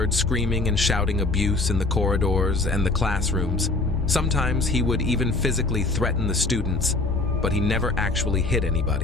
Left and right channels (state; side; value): quieter; right; 3.2 dB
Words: screaming and shouting abuse in the corridors and the classrooms. Sometimes he would even physically threaten the students, but he never actually hit